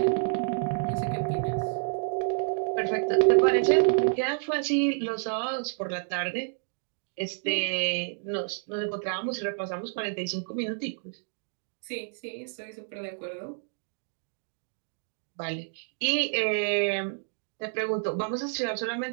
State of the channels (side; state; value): left; silent; digital silence